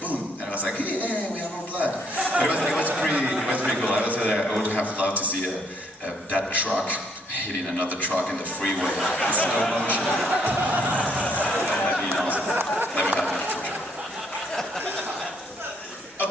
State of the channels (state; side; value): normal; both; correlation 0.69